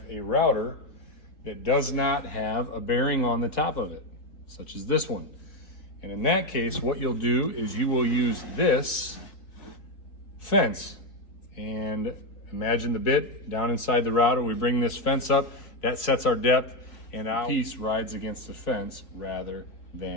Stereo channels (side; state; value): right; late; 3.8 ms